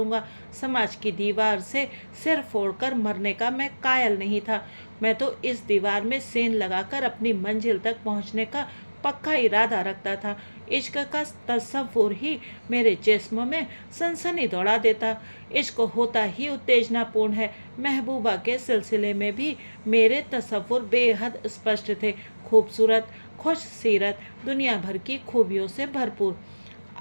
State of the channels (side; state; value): both; inverted; correlation -1.00